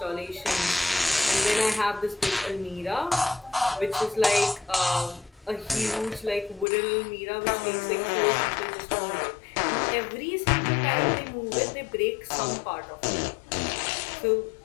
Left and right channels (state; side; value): drops out; right; at 6.7 s